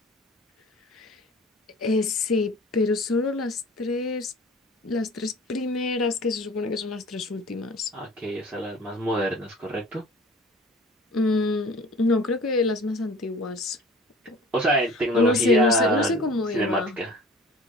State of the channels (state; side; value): normal; both; correlation 0.45